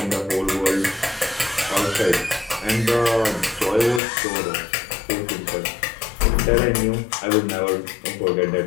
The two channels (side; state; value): right; drops out; at 4.0 s